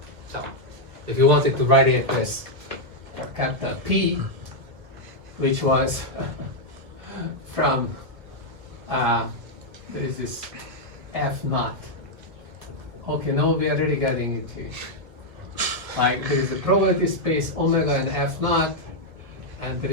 So, if you wanted to write it as capital P, which was from there is this F naught. Okay, now we are already getting into like there is a probability space omega and F naught, and there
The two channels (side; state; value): left; late; 1.5 ms